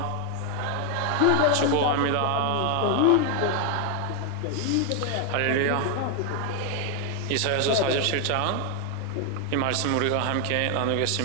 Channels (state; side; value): different; both; correlation 0.01